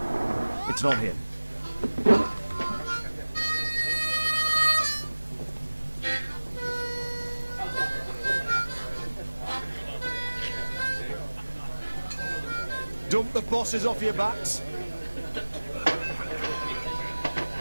It's not him. Dump the bosses off your backs.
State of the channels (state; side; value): inverted; both; correlation -1.00